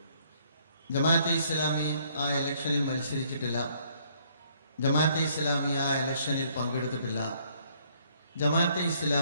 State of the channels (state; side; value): inverted; both; correlation -0.65